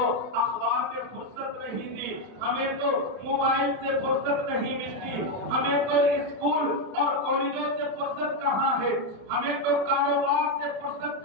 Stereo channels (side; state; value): left; late; 31 ms